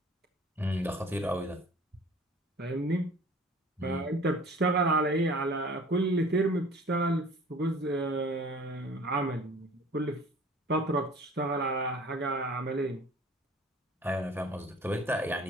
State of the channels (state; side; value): normal; both; correlation 0.47